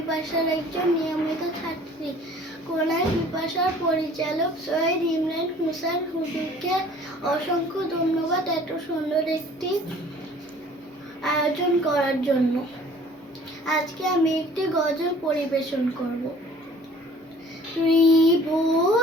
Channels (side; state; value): both; normal; correlation 0.52